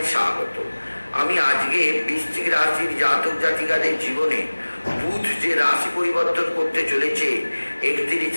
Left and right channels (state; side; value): inverted; both; correlation -1.00